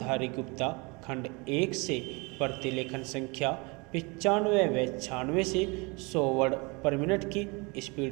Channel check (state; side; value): quieter; left; 28.1 dB